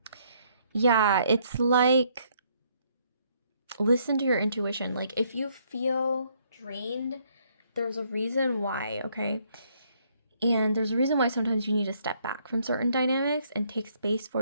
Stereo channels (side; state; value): both; inverted; correlation -0.69